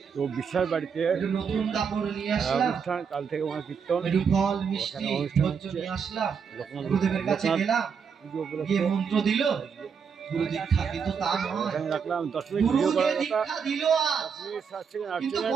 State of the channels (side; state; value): left; quieter; 6.5 dB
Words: তো বিশ্বাস বাড়িতে নতুন কাপড় নিয়ে আসলাম, কাল থেকে কীর্তন, একটু ফল মিষ্টি নিয়ে আসলাম, গুরুদেবের কাছে গেলাম, পুজো গিয়ে উপলক্ষে মন্ত্র দিল, গুরু দীক্ষা, কিন্তু তা নয়। এখানে রাখলাম 10 মিনিট গুরু ভিডিও যে করার কথা, দীক্ষা দিল 10 মিনিট 7 সেকেন্ড 8 কিন্তু সেকেন্ড